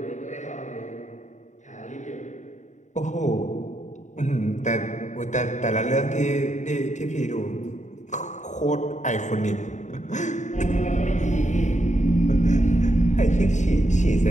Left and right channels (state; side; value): late; right; 0.35 ms